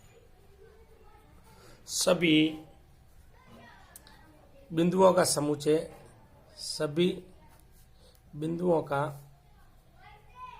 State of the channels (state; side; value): identical; both; correlation 1.00